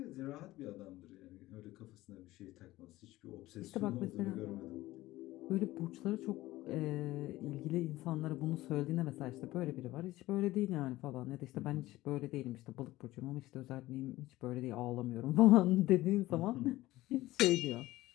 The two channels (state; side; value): quieter; right; 17.3 dB